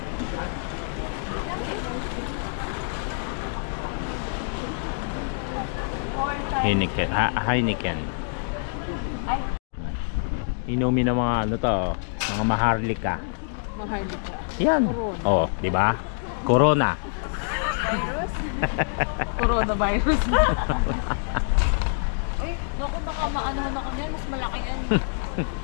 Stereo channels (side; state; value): right; silent; digital silence